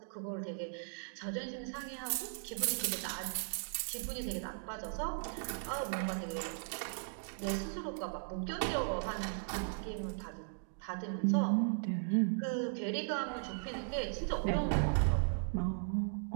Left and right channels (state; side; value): silent; left; digital silence